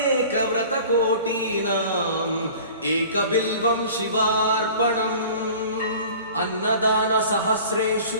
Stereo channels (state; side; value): inverted; both; correlation -0.44